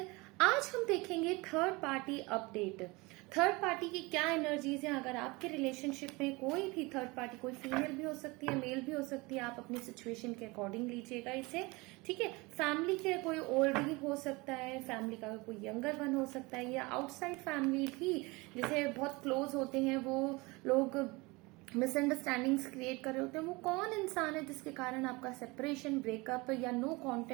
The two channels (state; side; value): quieter; left; 24.5 dB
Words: आज हम देखेंगे third party update. Third party की क्या एनर्जीज हैं। अगर आपके रिलेशनशिप में कोई भी थर्ड पार्टी, कोई फीमेल भी हो सकती है, मेल भी हो सकती है, आप अपनी सिचुएशन के अकॉर्डिंग लीजिएगा इसे, ठीक है। फैमिली के कोई ओल्ड हो सकता है, फैमिली का कोई यंगर वन हो सकता है, या आउटसाइड फैमिली भी जैसे बहुत क्लोज होते हैं वो लोग मिसअंडरस्टैंडिंग्स क्रिएट कर रहे होते हैं। वो कौन इंसान है जिसके कारण आपका सेपरेशन, ब्रेकअप या नो